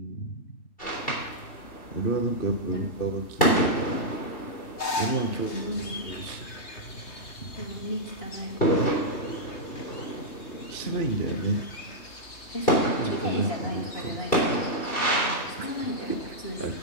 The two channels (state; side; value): late; right; 3.2 ms